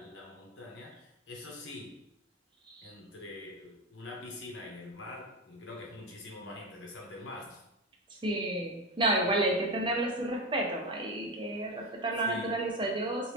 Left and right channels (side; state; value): both; normal; correlation 0.17